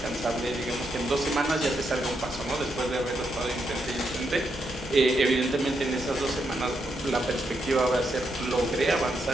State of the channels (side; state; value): right; noise; rumble, 19 dB below the sound